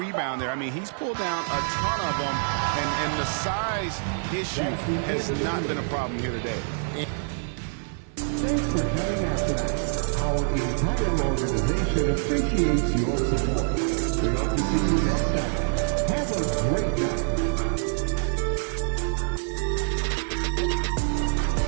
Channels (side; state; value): left; silent; digital silence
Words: there. I mean, he's pulled down a ton of them, and the size issue has not been a problem here today. Thanks for coming out tonight. Our entire organization appreciates your support. We hope to see you next time. Have a great night.